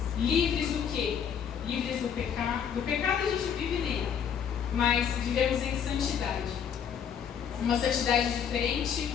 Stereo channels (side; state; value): right; quieter; 7.9 dB